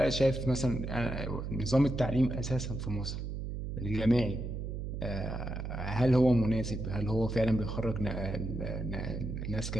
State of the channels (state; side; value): noise; right; hum, 5 dB below the sound